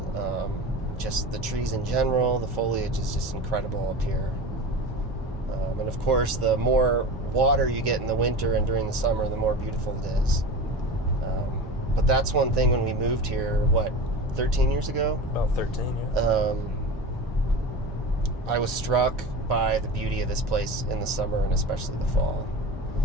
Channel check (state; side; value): normal; both; correlation 0.30